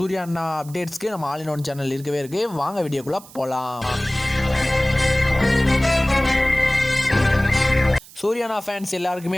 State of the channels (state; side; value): noise; right; hiss, 20 dB below the sound